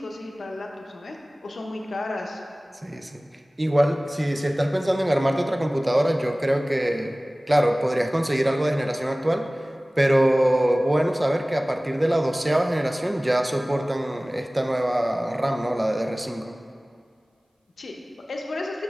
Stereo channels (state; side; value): normal; both; correlation 0.98